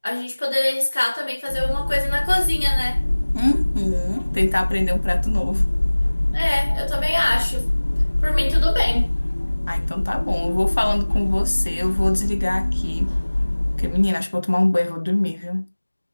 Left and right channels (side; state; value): both; inverted; correlation -1.00